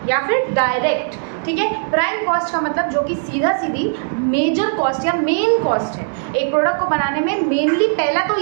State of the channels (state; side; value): silent; left; 67 dB below the other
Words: या फिर डायरेक्ट, ठीक है। प्राइम कॉस्ट का मतलब जो कि सीधा सीधी मेजर कॉस्ट या मेन कॉस्ट है। एक प्रोडक्ट को बनाने में मेनली पहला तो